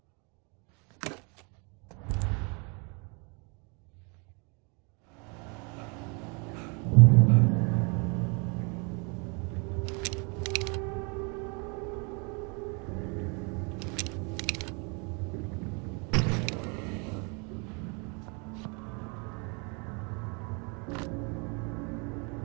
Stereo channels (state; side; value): quieter; left; 33.2 dB